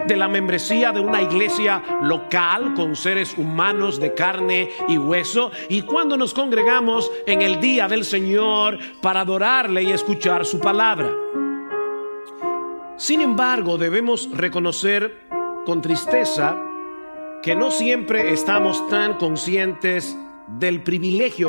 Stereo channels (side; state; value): both; inverted; correlation -1.00